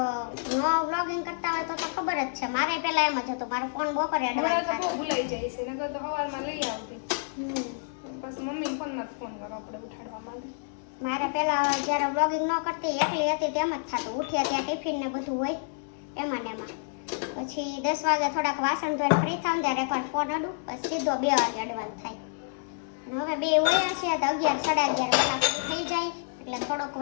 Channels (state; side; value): silent; right; digital silence